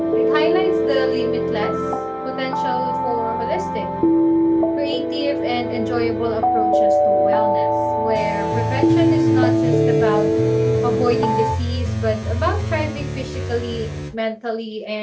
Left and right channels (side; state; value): both; identical; correlation 1.00